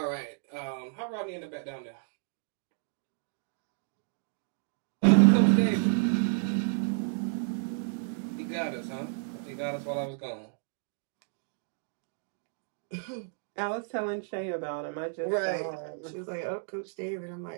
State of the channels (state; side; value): silent; left; digital silence